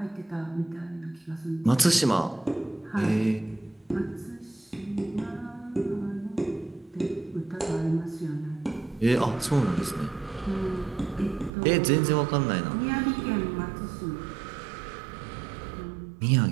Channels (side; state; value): left; drops out; at 11.5 s